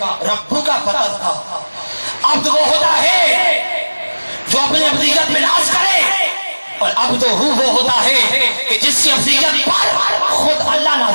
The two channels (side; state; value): both; inverted; correlation -1.00